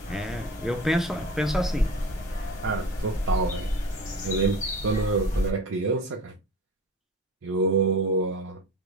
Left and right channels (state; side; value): normal; both; correlation 0.35